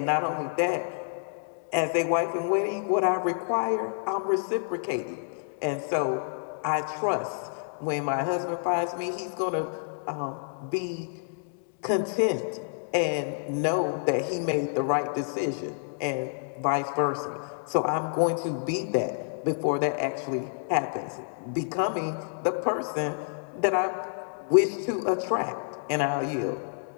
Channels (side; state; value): right; silent; digital silence